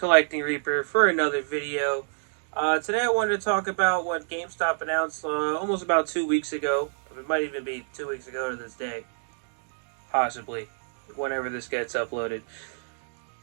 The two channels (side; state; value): left; silent; digital silence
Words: Reaper for another video. Today I wanted to talk about what GameStop announced almost about 2 weeks ago. It might even be 2 weeks ago to this day. Possibly, whenever this gets uploaded.